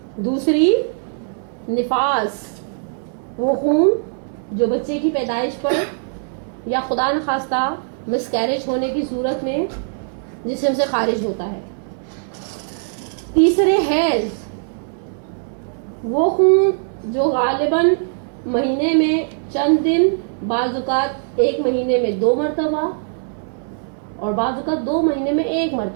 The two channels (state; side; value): silent; left; digital silence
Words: دوسری نفاس، وہ خون جو بچے کی پیدائش پر یا خدا نخواستہ مسکیریج ہونے کی صورت میں جسم سے خارج ہوتا ہے. تیسرے حیض، وہ خون جو غالباً مہینے میں چند دن، بعض اوقات 1 مہینے میں 2 مرتبہ اور بعض اوقات 2 مہینے میں 1